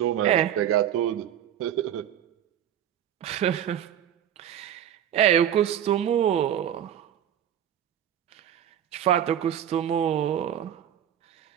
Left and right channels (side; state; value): left; quieter; 10.1 dB